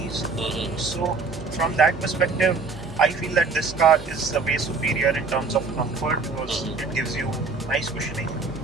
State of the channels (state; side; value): quieter; left; 4.3 dB